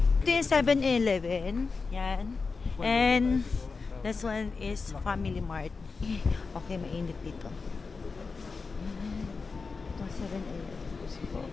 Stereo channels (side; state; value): right; quieter; 4.5 dB